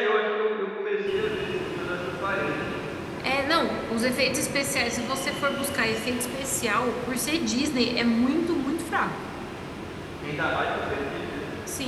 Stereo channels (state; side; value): identical; both; correlation 1.00